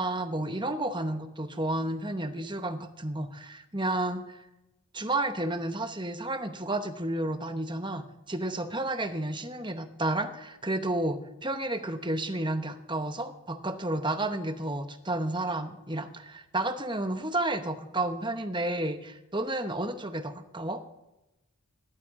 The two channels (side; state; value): both; normal; correlation 0.46